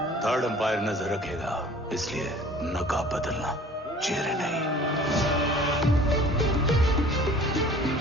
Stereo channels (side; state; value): both; normal; correlation 0.48